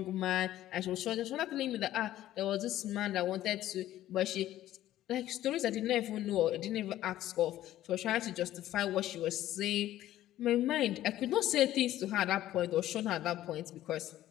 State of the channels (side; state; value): right; quieter; 13.6 dB